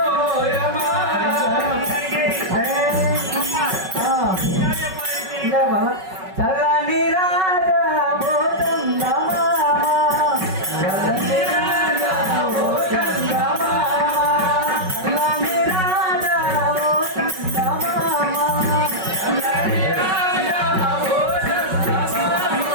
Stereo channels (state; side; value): late; left; 5.3 ms